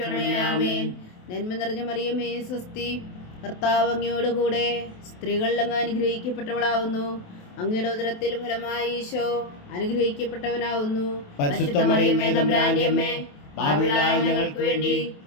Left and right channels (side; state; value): right; late; 28 ms